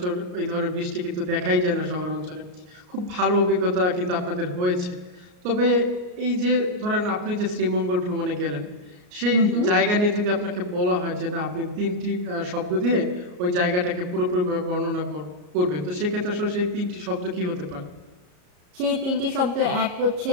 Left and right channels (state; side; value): late; left; 34 ms